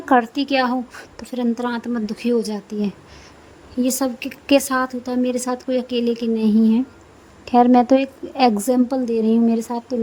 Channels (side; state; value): both; identical; correlation 1.00